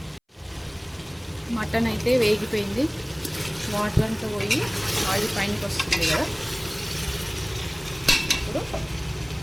మటన్ అయితే వేగిపోయింది, వాటర్ అంతా పోయి ఆయిల్ పైనకి వస్తుంది కదా. ఇప్పుడు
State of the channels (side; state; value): both; identical; correlation 1.00